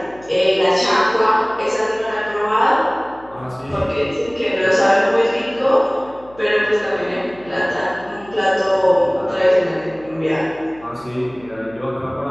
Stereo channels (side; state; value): left; noise; hum, 25 dB below the sound